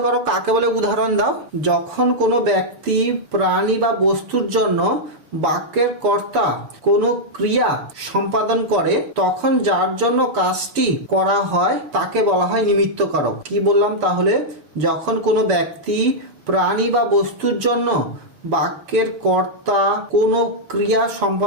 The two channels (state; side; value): late; left; 6.7 ms